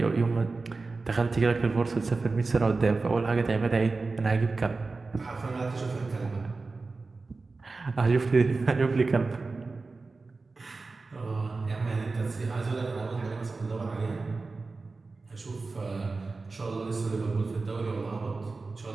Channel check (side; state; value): left; quieter; 3.8 dB